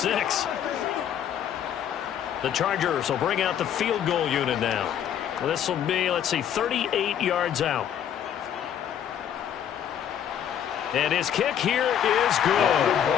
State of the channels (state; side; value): quieter; right; 9.5 dB